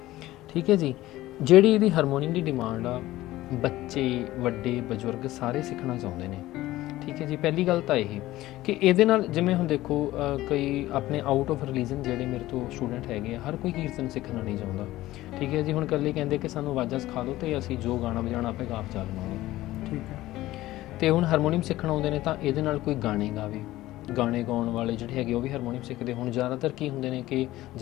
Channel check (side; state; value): right; quieter; 16.4 dB